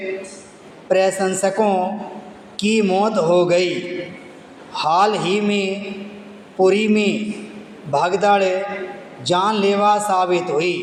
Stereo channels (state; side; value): identical; both; correlation 1.00